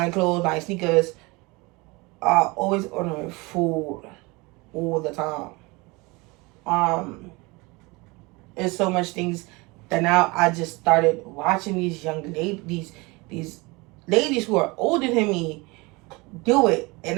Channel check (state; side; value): quieter; left; 25.2 dB